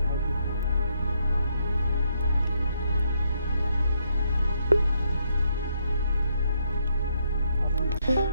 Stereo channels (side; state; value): both; inverted; correlation -0.75